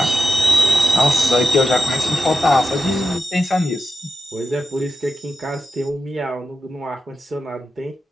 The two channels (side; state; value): both; normal; correlation 0.91